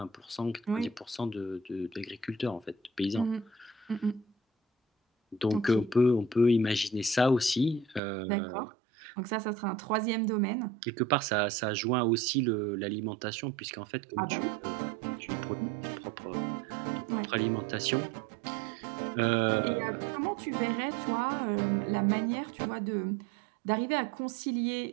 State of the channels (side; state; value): left; drops out; at 8.0 s